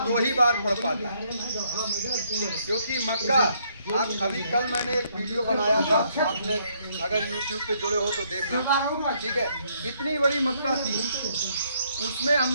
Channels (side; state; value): both; inverted; correlation -0.70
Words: 2 ही बार पड़ पाता है, क्योंकि मक्का आप अभी कल मैंने एक वीडियो बनाया था, आपने अगर YouTube पे जुड़े हो तो देखना, ठीक है। इतनी बड़ी मक्का थी, उसमें